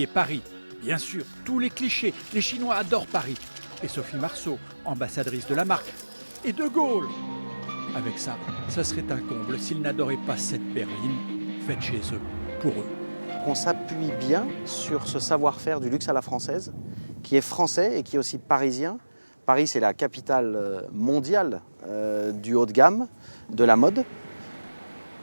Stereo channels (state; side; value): inverted; both; correlation -1.00